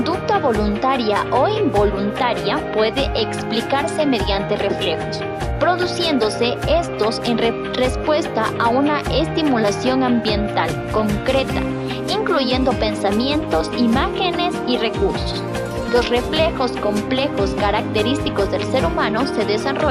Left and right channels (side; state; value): both; identical; correlation 1.00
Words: voluntaria o involuntaria puede explicarse mediante reflejos, produciéndose estos en respuesta a una estimulación ambiental concreta, incluyendo pensamientos, imágenes y recursos. Los reflejos complejos característicos del ser humano se